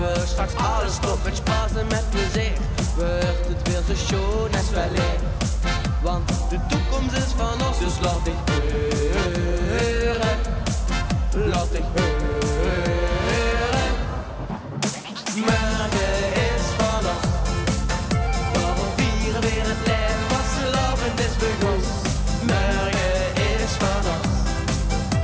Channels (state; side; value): identical; both; correlation 1.00